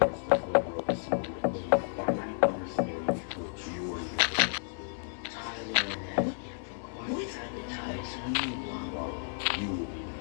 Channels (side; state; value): right; silent; digital silence